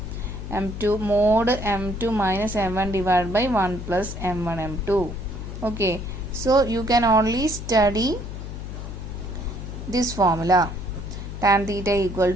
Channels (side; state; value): left; noise; hum, 8 dB below the sound